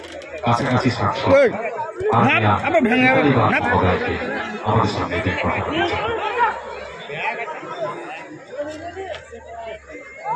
কাছাকাছি সাংসদ আমাদের সামনে কথা বলছেন।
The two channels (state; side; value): identical; both; correlation 1.00